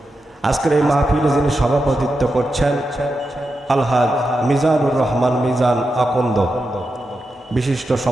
আজকের এই মাহফিলে যিনি সভাপতিত্ব করছেন আলহাজ মিজানুর রহমান মিজান আকন্দ, বিশিষ্ট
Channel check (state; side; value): normal; both; correlation 0.88